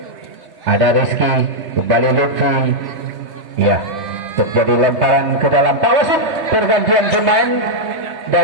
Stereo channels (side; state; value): left; late; 3.2 ms